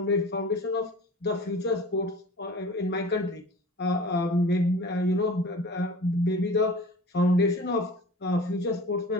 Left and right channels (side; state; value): both; normal; correlation 0.40